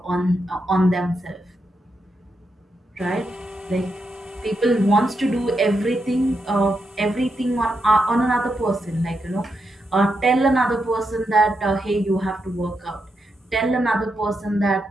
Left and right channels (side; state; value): both; normal; correlation 0.84